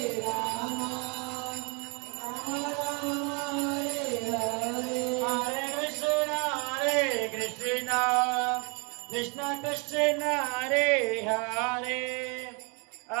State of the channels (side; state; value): left; quieter; 33.8 dB